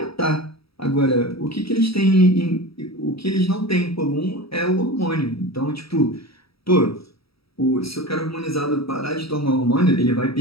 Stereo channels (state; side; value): late; right; 0.76 ms